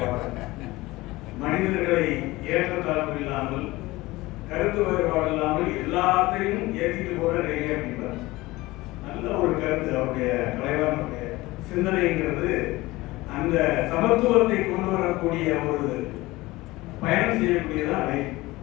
மனிதர்களை ஏற்றத்தாழ்வு இல்லாமல், கருத்து வேறுபாடு இல்லாமல் எல்லாத்தையும் ஏற்றிட்டு போற ரயிலே அப்படின்றார். நல்ல ஒரு கருத்து அவருடைய கலைவாணருடைய சிந்தனைங்கிறது. அந்த சமத்துவத்தை கொண்டு வரக்கூடிய ஒரு பயணம் செய்யக்கூடியதான் ரயில்.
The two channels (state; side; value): quieter; right; 19.9 dB